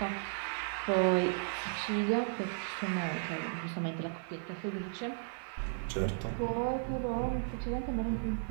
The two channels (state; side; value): silent; left; 54 dB below the other